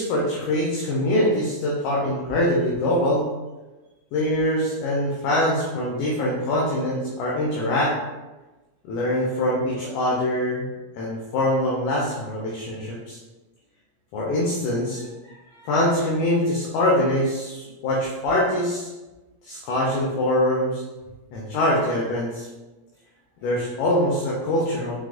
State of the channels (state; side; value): late; right; 17 ms